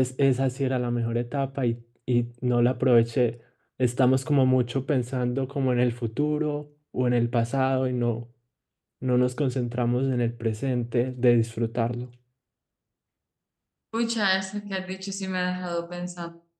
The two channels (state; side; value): identical; both; correlation 1.00